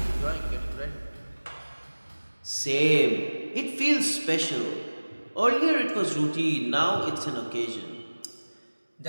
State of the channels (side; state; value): both; inverted; correlation -1.00